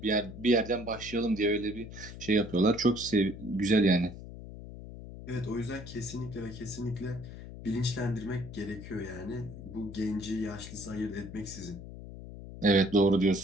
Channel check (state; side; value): noise; left; hum, 12 dB below the sound